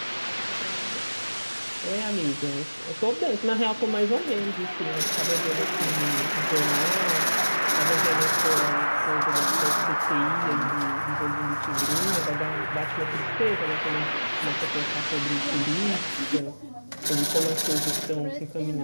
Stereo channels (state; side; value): inverted; both; correlation -1.00